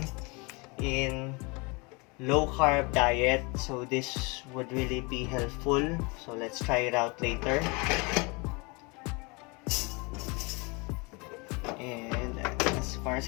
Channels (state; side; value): quieter; right; 28.8 dB